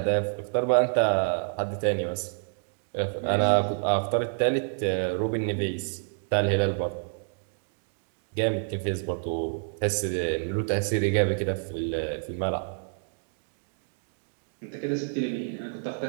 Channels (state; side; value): silent; left; digital silence